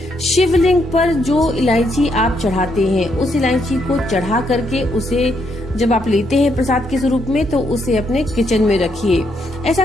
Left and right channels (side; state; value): both; normal; correlation 0.75